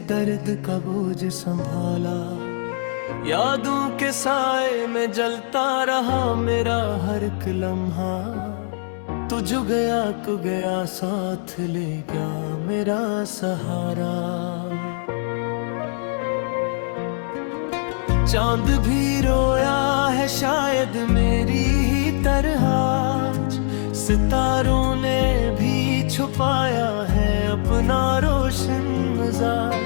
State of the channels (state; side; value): silent; right; digital silence